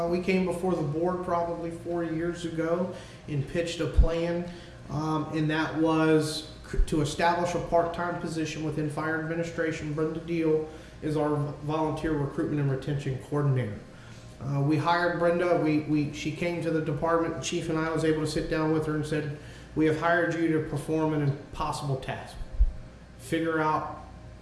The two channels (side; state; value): both; identical; correlation 1.00